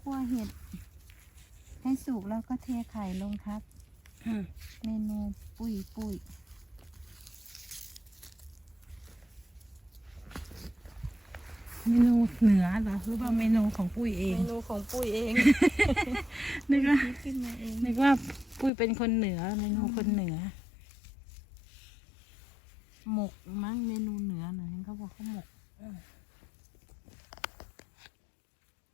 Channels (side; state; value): right; drops out; at 18.7 s